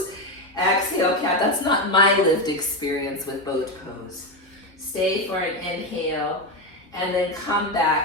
Exhale, cat. That's not my lived experience with boat pose. Stay for an inhale and then come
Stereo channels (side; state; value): both; normal; correlation 0.12